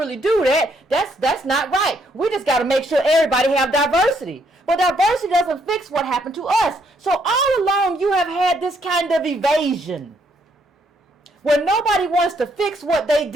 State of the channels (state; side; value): normal; both; correlation 0.71